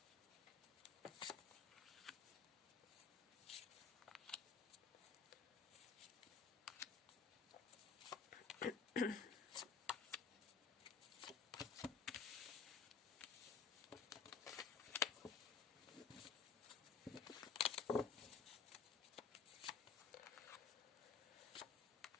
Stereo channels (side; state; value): right; quieter; 5.7 dB